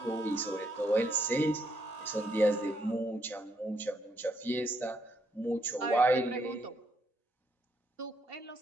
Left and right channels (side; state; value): both; normal; correlation 0.75